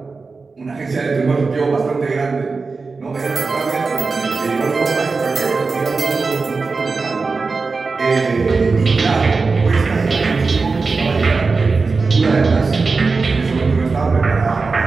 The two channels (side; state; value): left; quieter; 4.3 dB